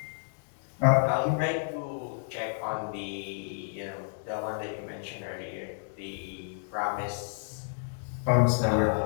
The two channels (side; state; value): right; silent; digital silence